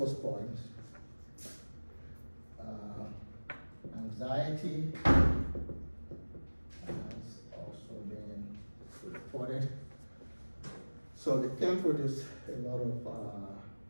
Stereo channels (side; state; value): both; inverted; correlation -1.00